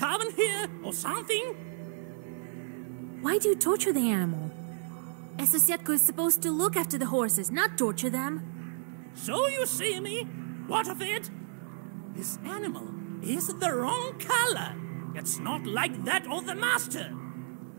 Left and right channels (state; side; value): silent; left; 57 dB below the other